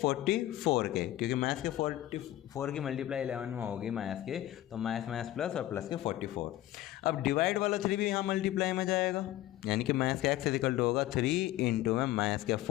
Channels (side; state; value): right; quieter; 14.7 dB